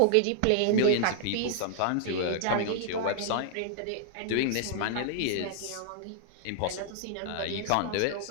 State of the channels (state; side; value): different; both; correlation -0.01